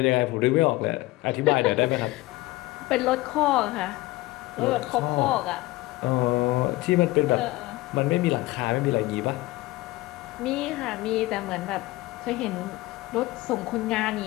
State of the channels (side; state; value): right; quieter; 19.4 dB